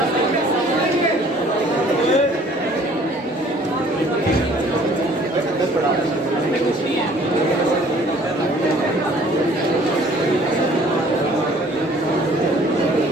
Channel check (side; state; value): both; normal; correlation 0.55